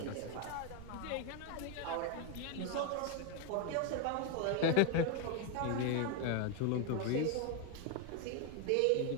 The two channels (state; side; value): different; both; correlation 0.01